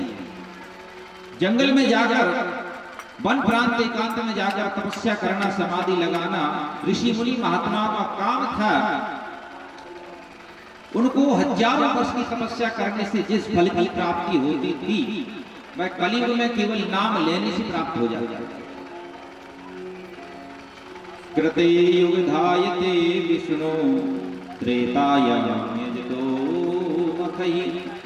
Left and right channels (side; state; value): both; identical; correlation 1.00